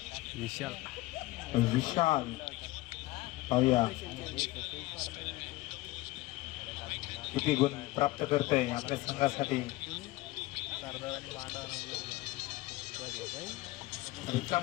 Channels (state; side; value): quieter; right; 19.4 dB